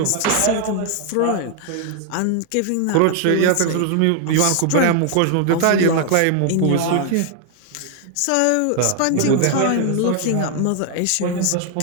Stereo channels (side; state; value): both; different; correlation 0.00